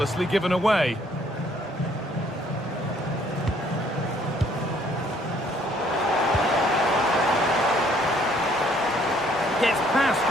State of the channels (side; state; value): both; normal; correlation 0.63